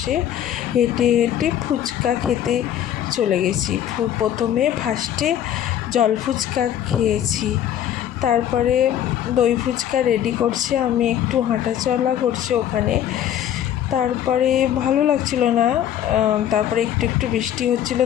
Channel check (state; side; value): quieter; right; 10.6 dB